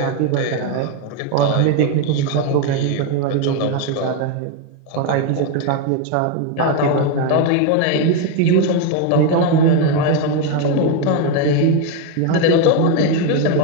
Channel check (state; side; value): different; both; correlation 0.02